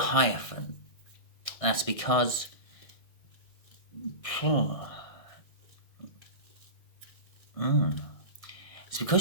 That's because it's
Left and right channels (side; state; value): right; late; 1.6 ms